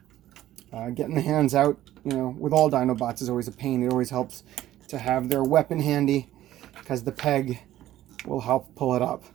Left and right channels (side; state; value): left; quieter; 13.7 dB